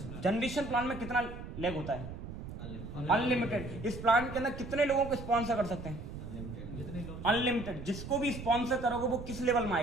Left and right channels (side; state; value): right; noise; rumble, 9 dB below the sound